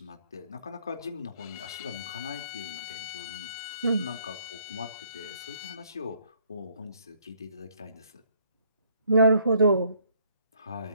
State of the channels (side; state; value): both; inverted; correlation -0.64